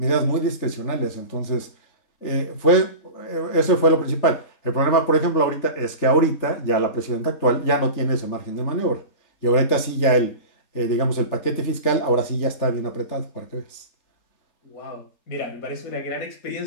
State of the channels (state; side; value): late; right; 3.4 ms